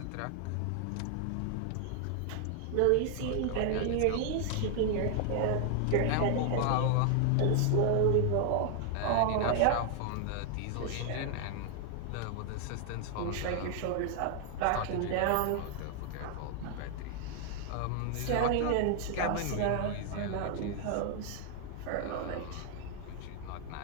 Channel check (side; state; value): both; different; correlation 0.00